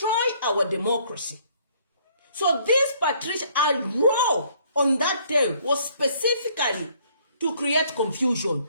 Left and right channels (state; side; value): inverted; both; correlation -0.63